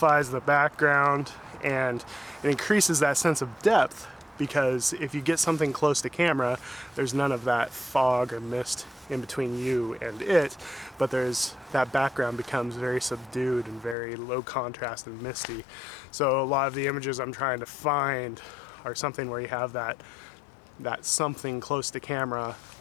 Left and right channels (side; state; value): right; drops out; at 14.0 s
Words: the background and it increases that sense of depth, because if you get something close to camera, there's none of that fog or mist in between you and it, but that background becomes very subdued and very low contrast and misty. So a lot of the images I'm trying to find are something where you have that something close to camera,